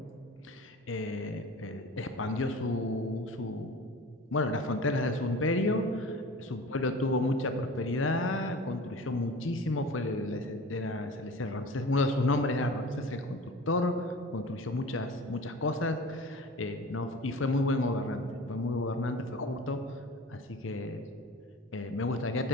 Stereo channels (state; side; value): normal; both; correlation 0.39